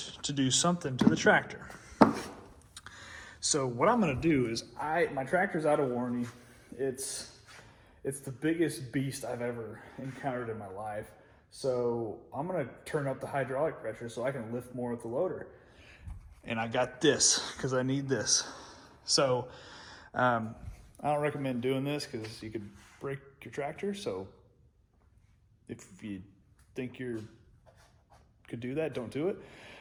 to do something to the tractor. So what I'm gonna do is my tractor's out of warranty. It's the biggest beast I've ever encountered in my life. So I'm gonna turn up the hydraulic pressure so I can lift more with the loader. And I got this because I need this. So I don't recommend doing this because you could break your tractor. So if you think you could do that, don't do it.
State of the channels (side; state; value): both; identical; correlation 1.00